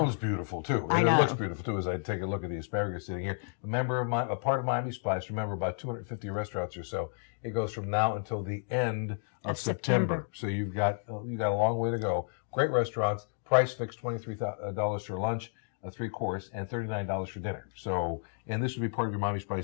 beautiful too. I And know. it looks beautiful too as I take a look at the asparagus sitting here. A part of Miami Spice, remember, about 250 restaurants or so. It goes from now until the end of September. So you've got a long way to go. Great restaurants. Price fixed $23 for lunch, a 3-course, and $39 for dinner. So, and this would be part of your Miami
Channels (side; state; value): right; silent; digital silence